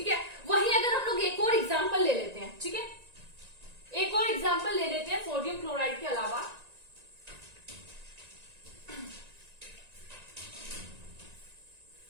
है। वहीं अगर हम लोग एक और एग्जांपल ले लेते हैं, ठीक है, एक और एग्जांपल ले लेते हैं सोडियम क्लोराइड के अलावा।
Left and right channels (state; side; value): late; left; 1.9 ms